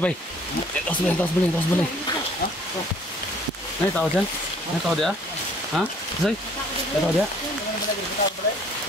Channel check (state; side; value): normal; both; correlation 0.58